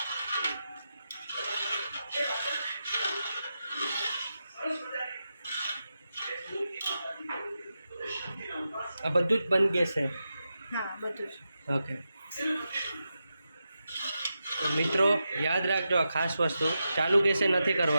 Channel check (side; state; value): both; inverted; correlation -0.89